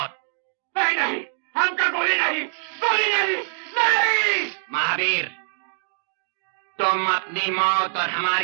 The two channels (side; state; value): left; silent; digital silence